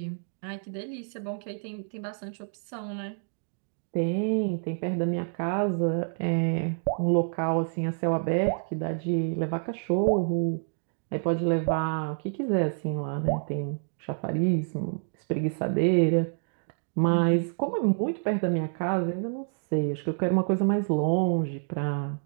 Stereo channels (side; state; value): left; silent; digital silence